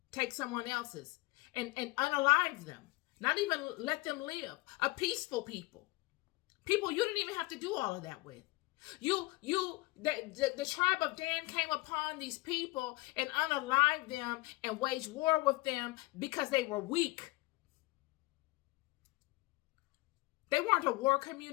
Take someone else's and unalive them. Not even let them live. A peaceful people. People you didn't even have to do all of that with. The tribe of Dan came upon these people and unalived them and waged war with them because they were weak. They weren't a war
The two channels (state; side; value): quieter; right; 22.1 dB